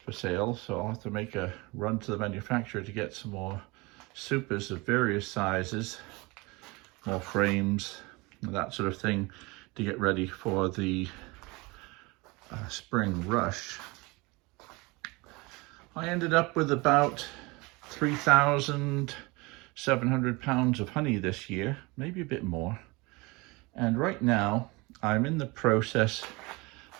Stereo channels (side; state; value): left; quieter; 25.1 dB